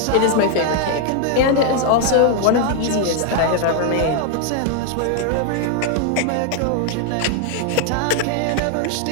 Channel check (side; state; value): both; different; correlation 0.00